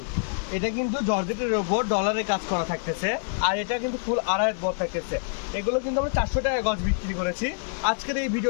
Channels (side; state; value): right; silent; digital silence